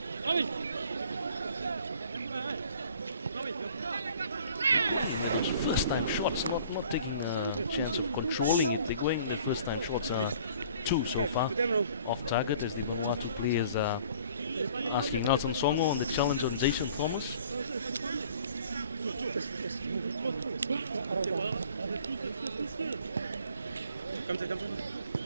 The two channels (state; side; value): inverted; both; correlation -0.53